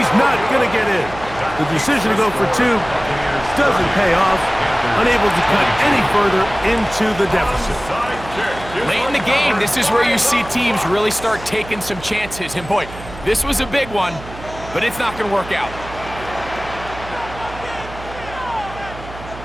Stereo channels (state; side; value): noise; right; hum, 14 dB below the sound